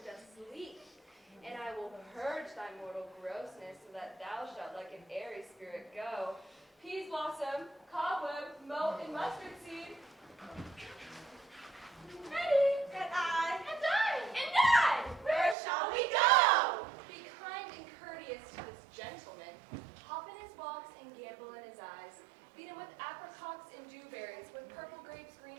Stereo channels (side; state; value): left; drops out; at 15.6 s